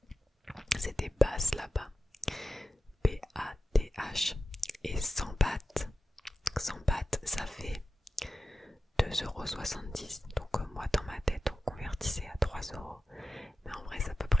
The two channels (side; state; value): both; normal; correlation 0.93